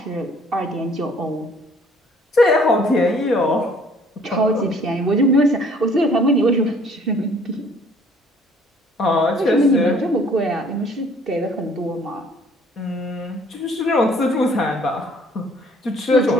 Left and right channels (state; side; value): normal; both; correlation 0.58